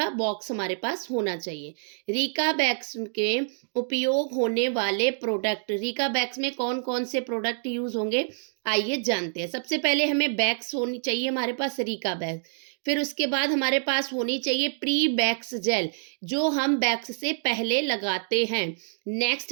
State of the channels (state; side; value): silent; left; digital silence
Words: बॉक्स हमारे पास होना चाहिए। रीका वैक्स के उपयोग होने वाले प्रोडक्ट, रीका वैक्स में कौन कौन से प्रोडक्ट यूज होंगे आइए जानते हैं। सबसे पहले हमें वैक्स होनी चाहिए हमारे पास रीका वैक्स। फिर उसके बाद हमारे पास होनी चाहिए प्री वैक्स जेल जो हम वैक्स से पहले लगाते हैं। नेक्स्ट